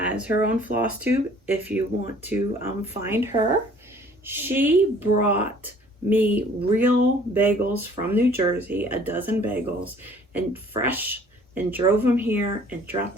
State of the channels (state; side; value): normal; both; correlation 0.54